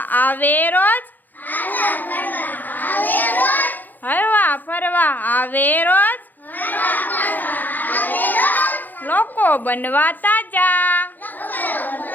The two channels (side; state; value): right; late; 0.085 ms